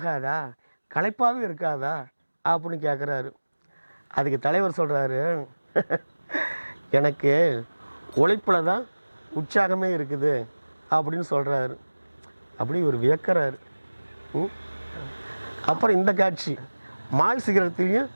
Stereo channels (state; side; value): inverted; both; correlation -1.00